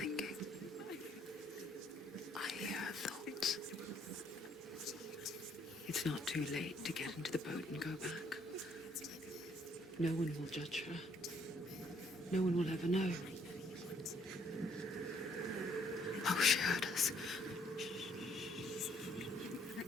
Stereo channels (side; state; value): both; normal; correlation 0.66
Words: I hear her thoughts. It's not too late to get into the boat and go back. No one will judge her. No one will ever know. Oh, she heard us.